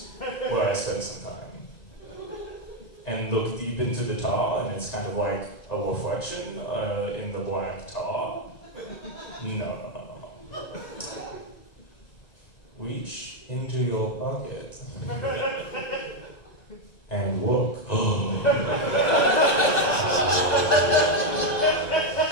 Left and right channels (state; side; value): late; right; 2.0 ms